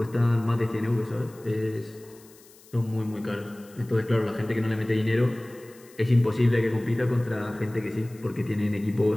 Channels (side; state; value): left; noise; hiss, 25 dB below the sound